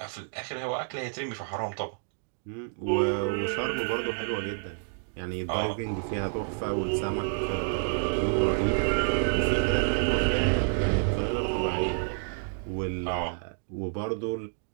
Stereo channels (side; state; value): left; silent; digital silence